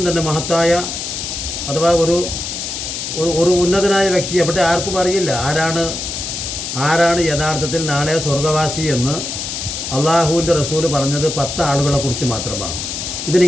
തന്നെ, മഹത്തായ അഥവാ ഒരു ഉന്നതനായ വ്യക്തി. അവിടെ ആർക്കും അറിയില്ല ആരാണ് യഥാർത്ഥത്തിൽ നാളെ സ്വർഗവാസി എന്ന്. അള്ളാഹുവിൻ്റെ റസൂൽ പറഞ്ഞത് 10 ആളുകളെക്കുറിച്ച് മാത്രമാണ്. ഇത്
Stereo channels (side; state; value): left; noise; hiss, 5 dB below the sound